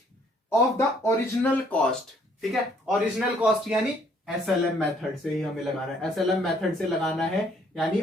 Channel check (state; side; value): normal; both; correlation 0.64